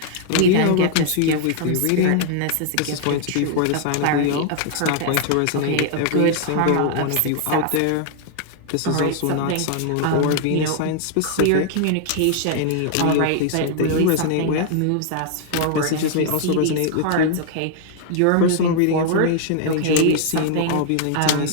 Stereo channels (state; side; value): different; both; correlation 0.00